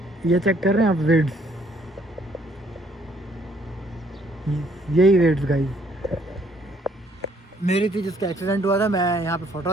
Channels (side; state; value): both; normal; correlation 0.65